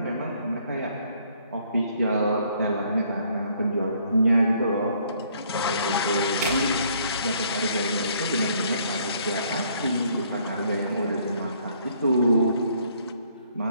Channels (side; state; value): both; inverted; correlation -0.64